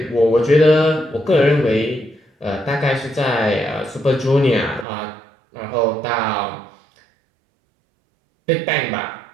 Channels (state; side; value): drops out; left; at 4.9 s